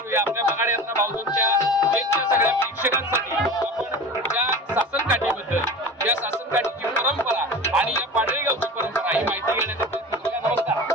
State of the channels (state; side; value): normal; both; correlation 0.33